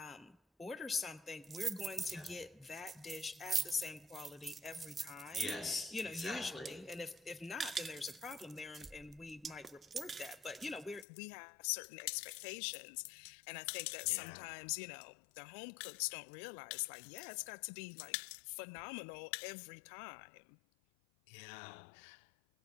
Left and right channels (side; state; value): right; drops out; at 11.1 s